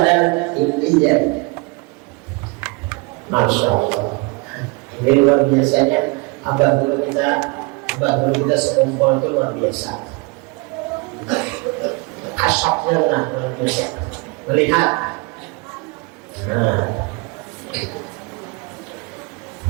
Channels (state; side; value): quieter; left; 28.6 dB